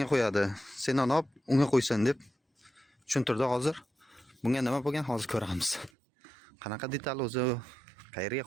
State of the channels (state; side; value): drops out; left; at 5.9 s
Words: qo'yadi. Sendan olib unga qo'ysin deb tushuntirdi hozir. Bunga nima bo'lgan hozir ko'ramiz. Qanaqa detal o'zi, qayerga